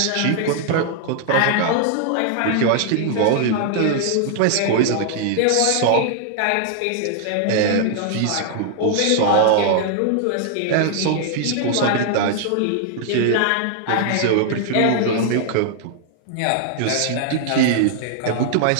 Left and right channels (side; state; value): both; different; correlation 0.00